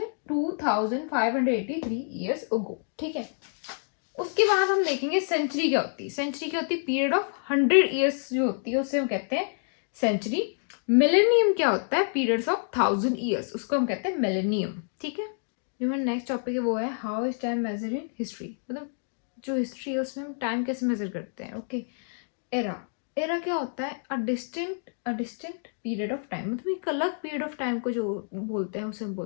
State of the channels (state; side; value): silent; right; digital silence